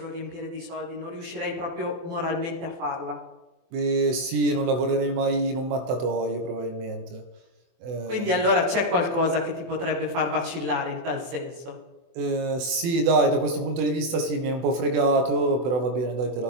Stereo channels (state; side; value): late; left; 24 ms